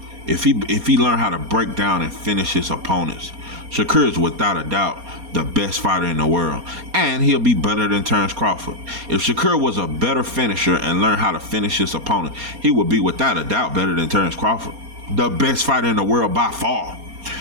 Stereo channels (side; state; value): left; late; 4.2 ms